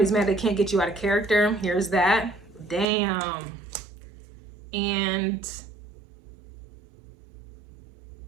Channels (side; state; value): left; drops out; at 2.9 s